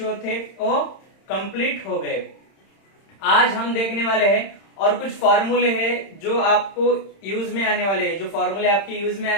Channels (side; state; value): right; late; 31 ms